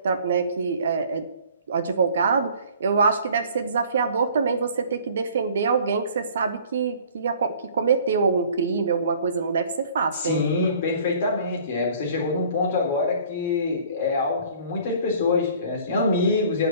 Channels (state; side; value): inverted; both; correlation -0.52